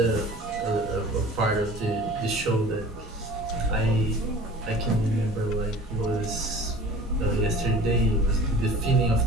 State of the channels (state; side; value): normal; both; correlation 0.43